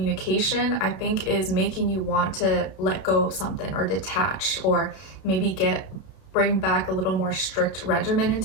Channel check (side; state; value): right; late; 32 ms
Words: I think is making you want to let go of something, or detach, or maybe get bring back a little more strict regimen